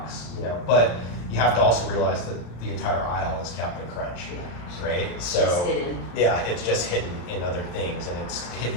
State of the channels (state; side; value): late; right; 34 ms